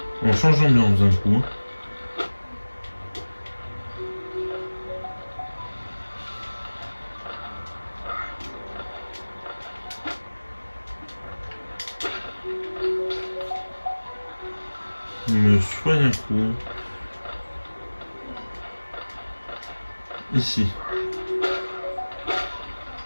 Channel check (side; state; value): both; inverted; correlation -1.00